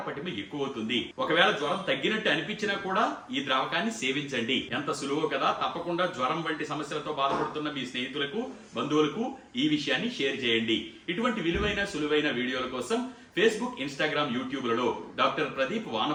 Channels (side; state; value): both; identical; correlation 1.00